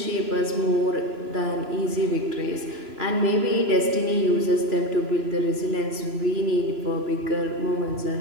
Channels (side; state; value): left; late; 3.0 ms